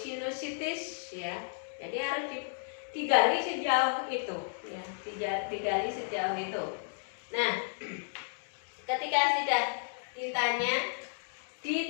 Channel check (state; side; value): silent; right; digital silence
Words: ya. Jadi harus digali sejauh itu, ya, digali sejauh itu. Nah, ketika sudah